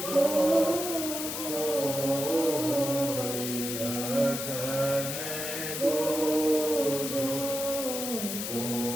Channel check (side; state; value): left; noise; hiss, 4 dB below the sound